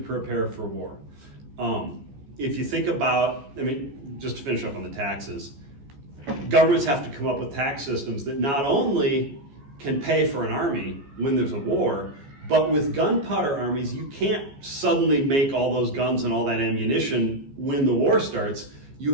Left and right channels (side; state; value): left; late; 14 ms